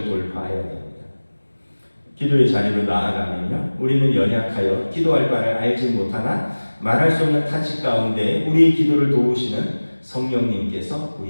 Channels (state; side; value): inverted; both; correlation -1.00